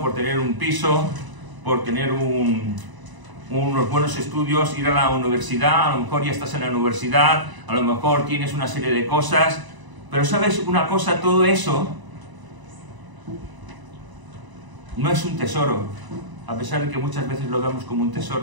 por tener un piso, por tener unos buenos estudios, ir a la universidad, a lo mejor ya estás en la universidad, a lo mejor tienes una serie de cosas, pero ¿sabes una cosa? Todo eso no es un tesoro, a pesar de que muchas veces lo vemos como un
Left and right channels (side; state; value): left; late; 1.0 ms